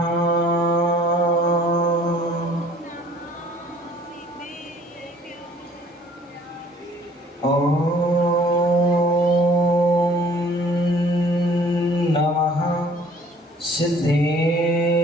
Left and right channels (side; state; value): both; normal; correlation 0.55